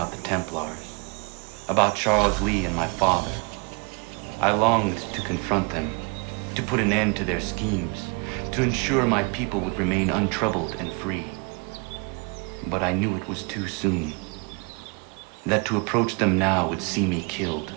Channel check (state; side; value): quieter; left; 31.7 dB